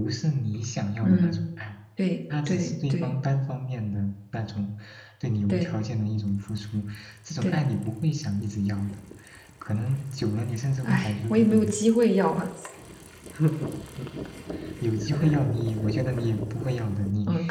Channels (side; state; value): both; identical; correlation 1.00